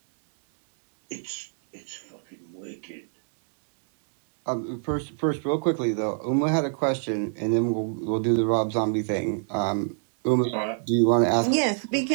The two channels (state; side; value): silent; left; digital silence